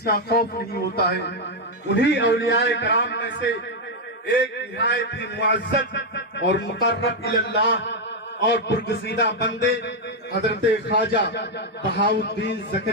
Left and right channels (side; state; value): both; normal; correlation 0.02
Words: کا خوف نہیں ہوتا ہے۔ انہی اولیاء کرام میں سے ایک نہایت ہی معزز اور مقرب اللہ اور برگزیدہ بندے حضرت خواجہ بہاؤالدین